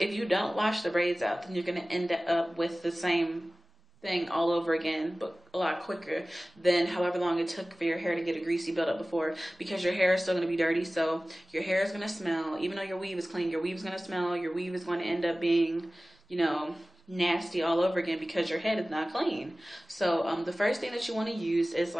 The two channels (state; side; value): normal; both; correlation 0.97